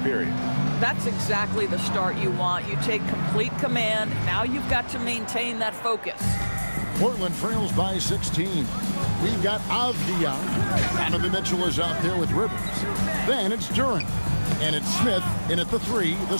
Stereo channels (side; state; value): both; inverted; correlation -1.00